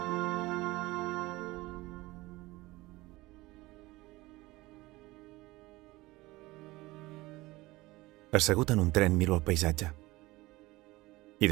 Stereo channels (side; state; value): left; quieter; 20.1 dB